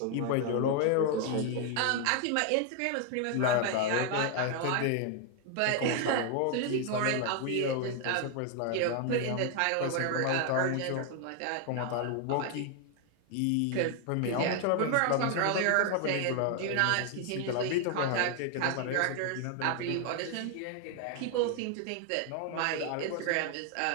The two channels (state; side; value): different; both; correlation 0.00